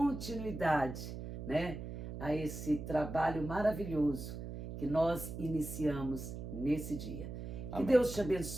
né, a esse trabalho maravilhoso que nós iniciamos nesse dia. Amém. Que Deus te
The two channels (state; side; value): noise; right; hum, 8 dB below the sound